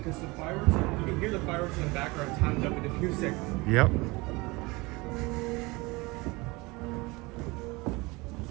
the fireworks, you can hear the fireworks in the background timed up with the music. Yep.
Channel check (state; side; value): quieter; left; 24.1 dB